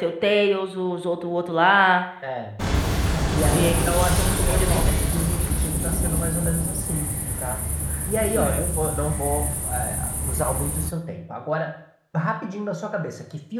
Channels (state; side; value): identical; both; correlation 1.00